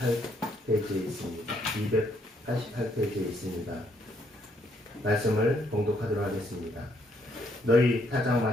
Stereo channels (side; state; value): both; normal; correlation 0.71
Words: 있습니다. 288페이지에 있습니다. 말씀을 봉독하도록 하겠습니다. 너희